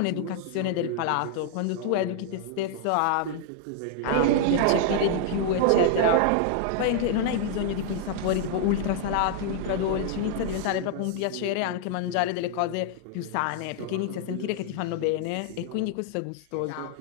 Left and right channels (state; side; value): different; both; correlation -0.01